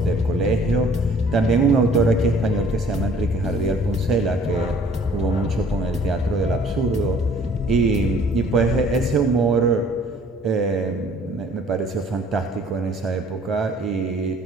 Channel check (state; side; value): normal; both; correlation 0.55